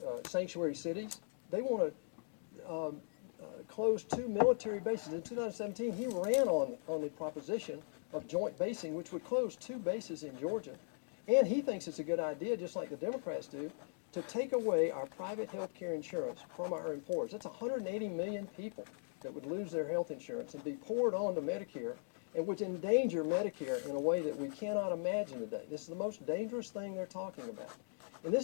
sanctuary cities. They want to close 2 military bases. In 2017, he ran on the proposition of joint basing, which would close 2 bases in Georgia. And he thinks it's a good idea, just like the Democrats do, to take away our private health care insurance from our employers. That's 180 million people that would lose their health insurance and be poured onto Medicare, and would endanger Medicare in a way that we cannot imagine today. This is the most dangerous thing they're talking about. And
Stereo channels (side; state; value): right; silent; digital silence